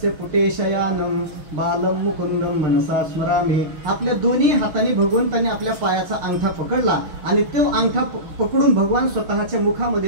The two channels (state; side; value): late; left; 6.1 ms